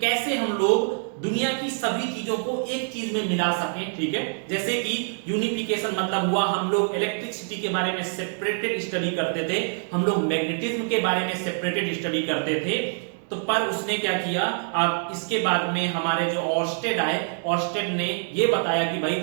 कैसे हम लोग दुनिया की सभी चीजों को एक चीज में मिला सकें। ठीक है, जैसे कि यूनिफिकेशन मतलब हुआ हम लोग इलेक्ट्रिसिटी के बारे में सेपरेटेड स्टडी करते थे, हम लोग मैग्नेटिज्म के बारे में सेपरेटेड स्टडी करते थे, तो पर उसने क्या किया, अब इसके बाद में हमारे जो ऑर्स्टेड आए, ऑर्स्टेड ने ये बताया कि भाई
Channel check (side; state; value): left; silent; digital silence